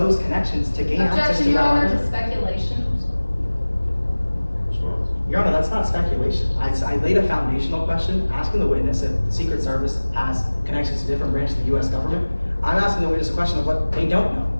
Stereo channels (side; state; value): both; inverted; correlation -1.00